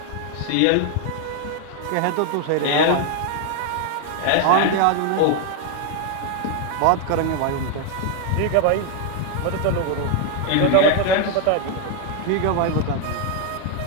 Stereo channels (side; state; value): both; different; correlation 0.00